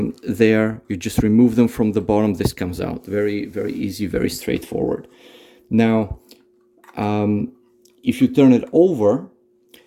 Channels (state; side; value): identical; both; correlation 1.00